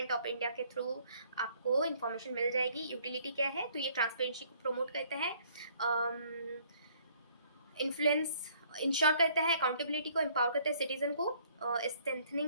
ऑफ इंडिया के थ्रू आपको इंफॉर्मेशन मिल जाएगी। यूटिलिटी क्या है, तो ये ट्रांसपेरेंसी को प्रमोट करता है, इन्फ्लुएंस इंश्योर करता है, अकाउंटेबिलिटी को एम्पावर करता है सिटीजन को,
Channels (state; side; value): inverted; both; correlation -0.62